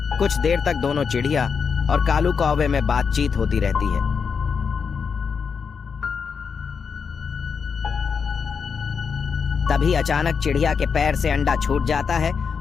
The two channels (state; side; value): quieter; right; 6.0 dB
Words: कुछ देर तक दोनों चिड़िया और कालू कौवे में बातचीत होती रहती है। तभी अचानक चिड़िया के पैर से अंडा छूट जाता है